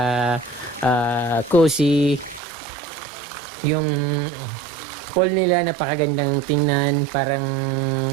cozy. Yung pool nila napakagandang tingnan, parang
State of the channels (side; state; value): left; drops out; at 2.4 s